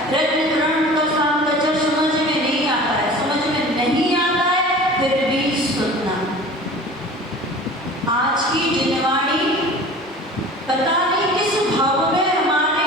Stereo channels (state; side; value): normal; both; correlation 0.41